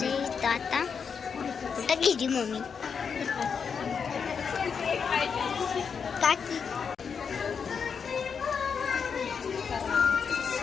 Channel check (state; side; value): quieter; right; 6.3 dB